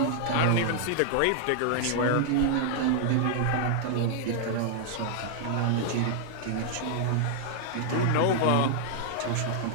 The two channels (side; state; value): both; different; correlation -0.01